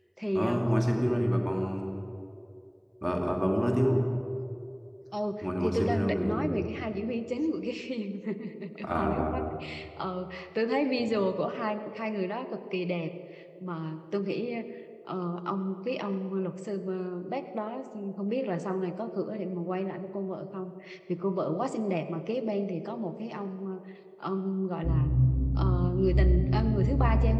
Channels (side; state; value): both; identical; correlation 1.00